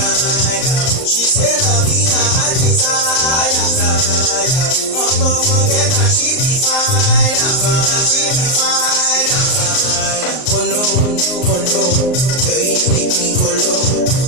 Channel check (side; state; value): right; late; 38 ms